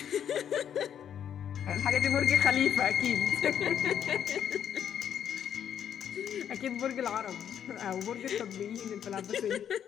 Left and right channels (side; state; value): right; quieter; 9.1 dB